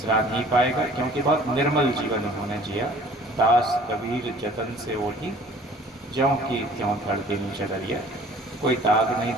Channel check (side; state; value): both; normal; correlation 0.51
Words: नहीं पाएगा, क्योंकि बहुत निर्मल जीवन उन्होंने जिया। दास कबीर जतन से ओढ़ी, ज्यों की त्यों धड़के नीचे डरिया। कोई दाग नहीं